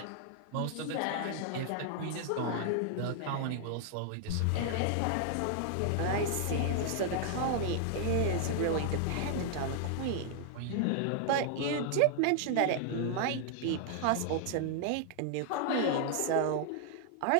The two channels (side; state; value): both; different; correlation 0.00